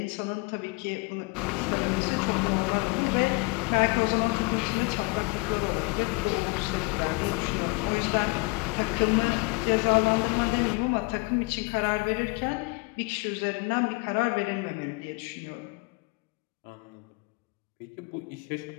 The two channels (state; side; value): quieter; right; 27.7 dB